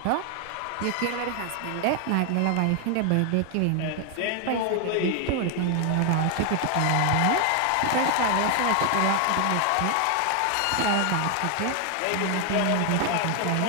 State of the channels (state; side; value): different; both; correlation 0.00